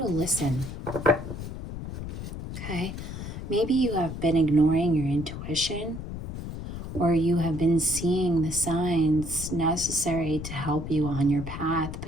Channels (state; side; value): noise; left; rumble, 8 dB below the sound